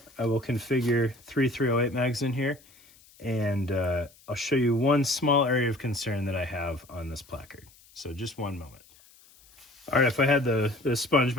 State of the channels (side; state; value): left; noise; hiss, 27 dB below the sound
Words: I will configure 3 308 mags in here, and I'll show you one small area of concern that I have on this placard. So just one moment. All right, if I had the